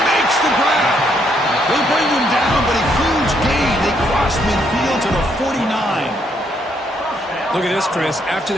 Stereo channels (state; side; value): normal; both; correlation 0.73